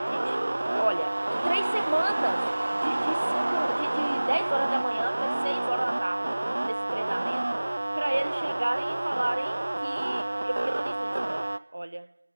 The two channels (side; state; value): both; inverted; correlation -1.00